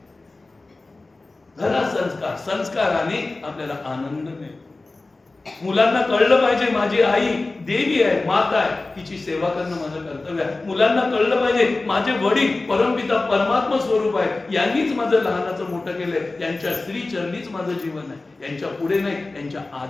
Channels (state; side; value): quieter; right; 3.3 dB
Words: घरा संस्काराने आपल्याला आनंद मिळतो. मुलांना कळलं पाहिजे, माझी आई देवी आहे, माता आहे, तिची सेवा करणं माझं कर्तव्य आहे. मुलांना कळलं पाहिजे, माझे वडील परमपिता परमात्मा स्वरूप आहे, यांनीच माझं लहानाचं मोठं केलंय, त्यांच्या श्री चरणीच माझं जीवन आहे, यांच्या पुढे नाही, यांच्या